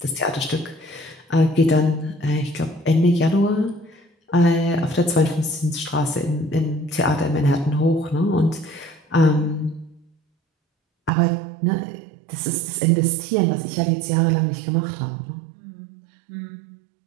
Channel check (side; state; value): left; drops out; at 11.1 s